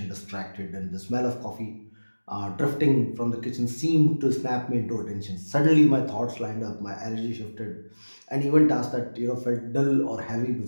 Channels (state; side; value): inverted; both; correlation -1.00